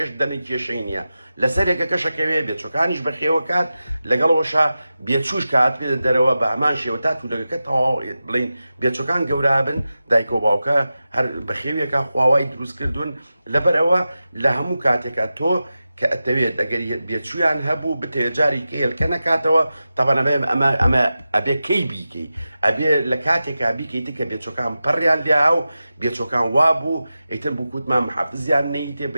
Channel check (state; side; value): inverted; both; correlation -0.93